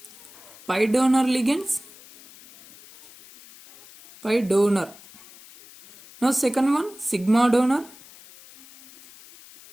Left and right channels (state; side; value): noise; left; hiss, 22 dB below the sound